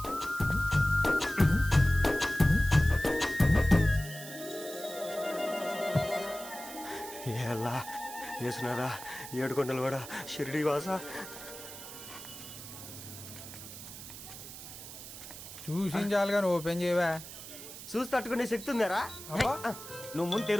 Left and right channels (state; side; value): noise; right; hiss, 12 dB below the sound